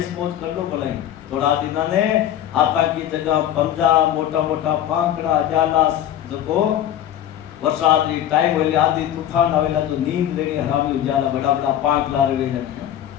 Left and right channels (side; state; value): right; quieter; 11.2 dB